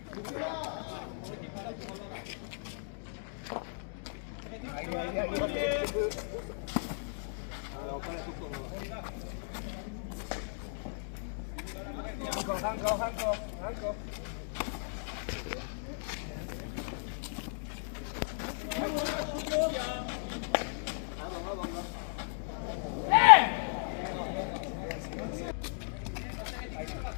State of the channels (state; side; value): silent; right; digital silence